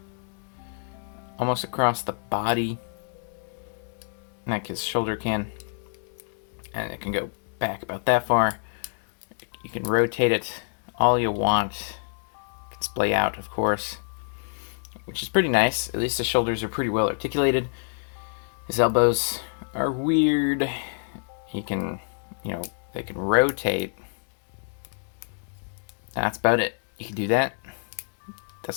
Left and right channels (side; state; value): right; silent; digital silence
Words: almost across the body, like his shoulder can. And it can go back about that far. You can rotate it all you want. You can splay out, of course, which is pretty nice. At least the shoulders are pretty well articulated. His elbows are weird. He can, they can rotate. That's about it. You can do that.